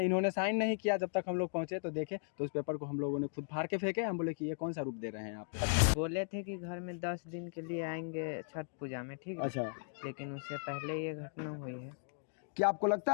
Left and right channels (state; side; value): silent; right; digital silence